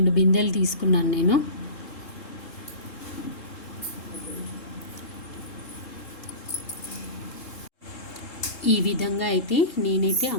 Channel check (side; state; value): right; late; 3.7 ms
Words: బిందెలు తీసుకున్నాను నేను. ఈ విధంగా అయితే నేనైతే